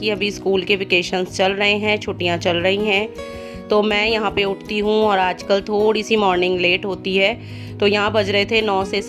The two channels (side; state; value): both; identical; correlation 1.00